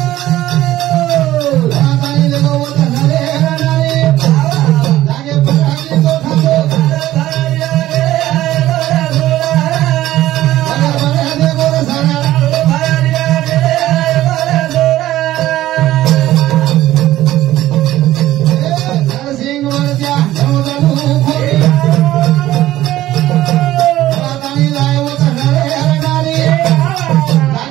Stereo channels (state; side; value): quieter; left; 14.7 dB